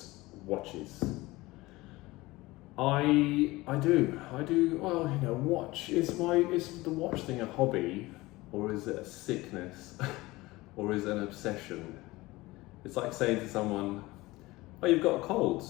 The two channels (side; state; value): right; quieter; 20.2 dB